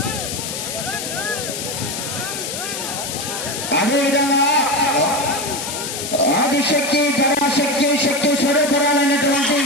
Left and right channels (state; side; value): noise; left; hiss, 5 dB below the sound